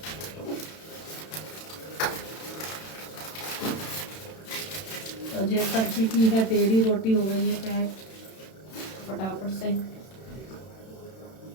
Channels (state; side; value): late; right; 31 ms